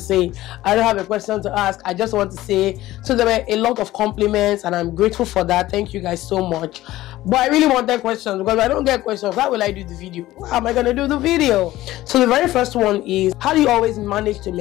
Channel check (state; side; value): quieter; right; 16.0 dB